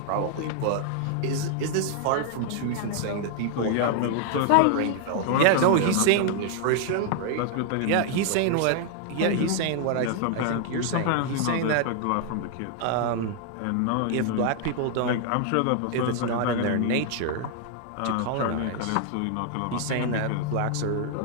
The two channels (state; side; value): different; both; correlation 0.00